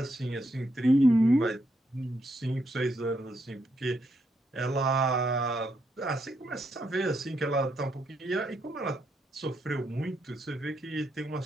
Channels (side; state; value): both; normal; correlation 0.79